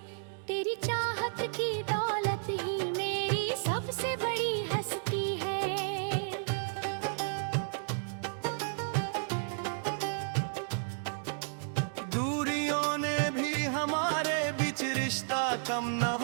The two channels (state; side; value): silent; left; digital silence